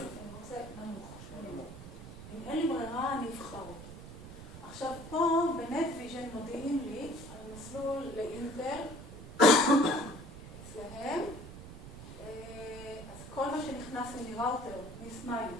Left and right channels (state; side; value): noise; right; rumble, 13 dB below the sound